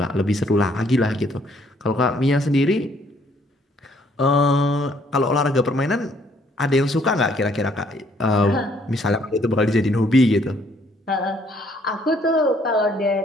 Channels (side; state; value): both; normal; correlation 0.65